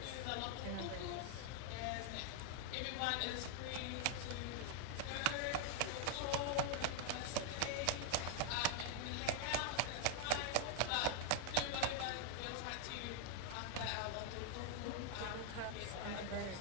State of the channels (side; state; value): both; different; correlation 0.00